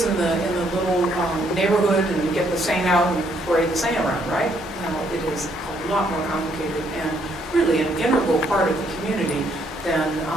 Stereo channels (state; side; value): normal; both; correlation 0.70